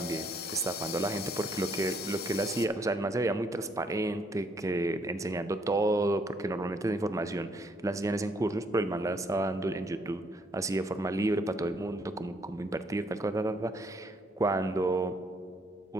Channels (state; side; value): normal; both; correlation 0.68